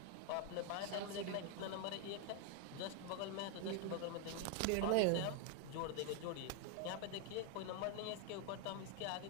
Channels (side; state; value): both; different; correlation 0.00